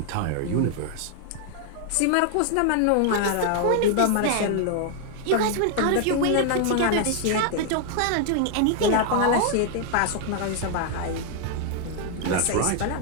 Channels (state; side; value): different; both; correlation 0.00